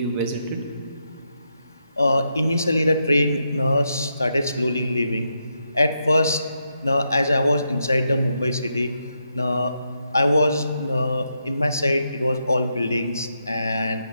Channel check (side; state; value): both; inverted; correlation -0.82